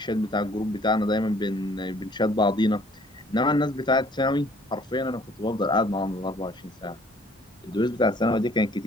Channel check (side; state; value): both; normal; correlation 0.58